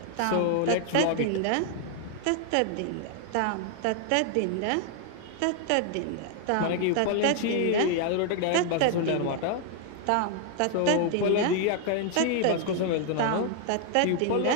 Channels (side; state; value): both; different; correlation 0.00